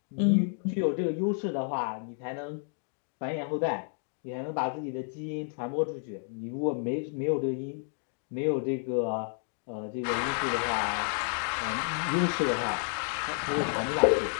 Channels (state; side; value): silent; right; 57 dB below the other